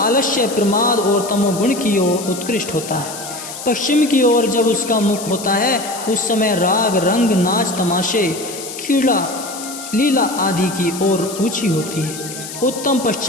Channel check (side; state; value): left; noise; hiss, 10 dB below the sound